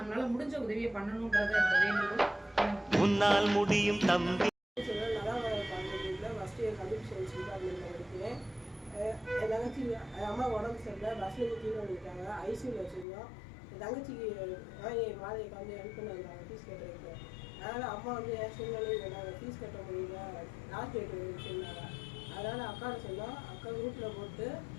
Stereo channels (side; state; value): right; drops out; at 13.1 s